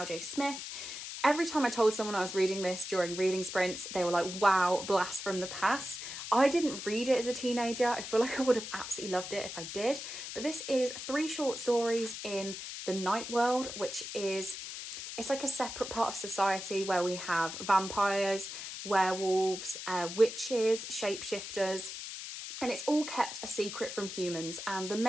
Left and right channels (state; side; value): noise; left; hiss, 8 dB below the sound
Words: Smith. Every time I told someone I was reading this during reading sprints, they were like, wow, blast from the past. I didn't read it as a teenager. I feel like I would have absolutely loved it if I did. But this is 3 short stories in the Night World, which is, it's like a separate part of society where we have vampires, werewolves, witches, shapeshifters, and it's all kept a secret from humans. And the